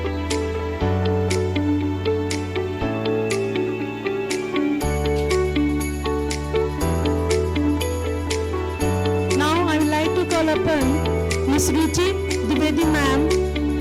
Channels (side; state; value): both; identical; correlation 1.00